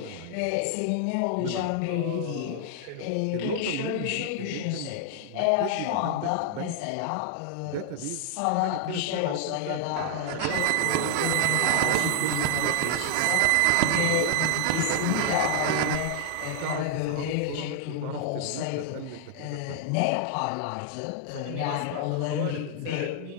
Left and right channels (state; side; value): different; both; correlation 0.00